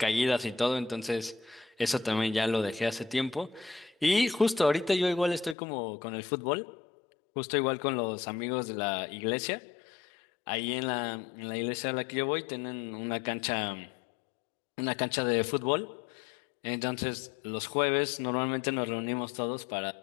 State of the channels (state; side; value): drops out; right; at 5.6 s